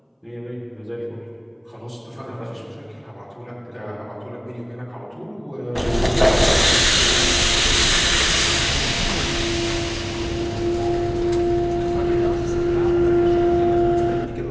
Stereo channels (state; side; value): identical; both; correlation 1.00